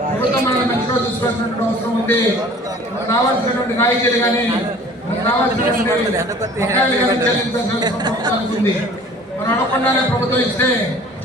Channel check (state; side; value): normal; both; correlation 0.49